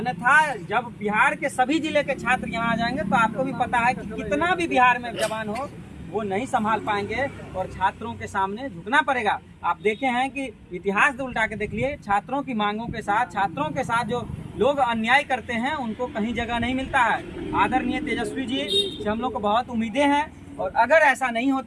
जब बिहार के सभी जिले के छात्र यहाँ आ जाएंगे तो आपको भी पता है कि कितना भी बिहार में जवान हो वो नहीं संभाल पाएंगे और छात्रों के सामने झुकना पड़ेगा। आप देखे हैं कि इतिहास उल्टा के देख लिए, छात्रों की मांगों के साथ, छात्रों के साथ जो लोग अन्याय करते हैं उनको कहीं जगह नहीं मिलता है। आदरणीय तेजस्वी जी से हम लोग को बहुत उम्मीदें हैं और अगर ऐसा नहीं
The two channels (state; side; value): identical; both; correlation 1.00